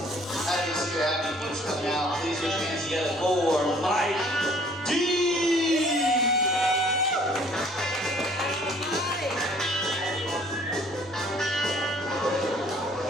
Happy to see your happy folks coming out. Please put your hands together for Mike D.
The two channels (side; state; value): both; normal; correlation 0.58